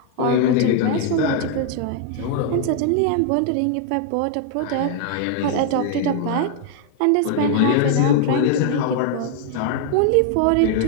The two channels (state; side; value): different; both; correlation 0.00